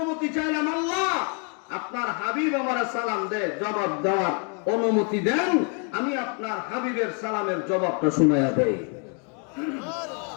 চাইলাম, আল্লাহ আপনার হাবিব আমার সালাম দেয়, জবাব দেওয়ার অনুমতি দেন। আমি আপনার হাবিবের সালামের জবাবটা শুনাইয়া দেই।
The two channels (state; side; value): quieter; right; 38.9 dB